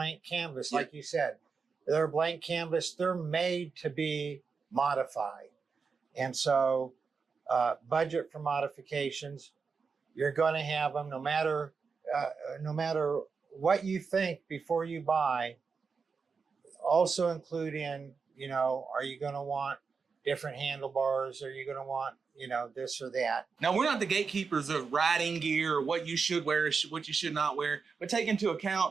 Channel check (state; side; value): quieter; left; 5.2 dB